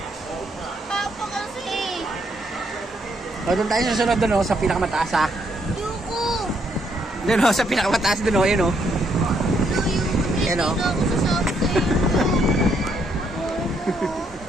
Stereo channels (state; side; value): normal; both; correlation 0.73